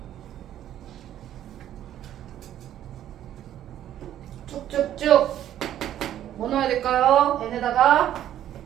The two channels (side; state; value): left; quieter; 11.5 dB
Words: 쭉쭉쭉 뭐 넣어야 될까요? n에다가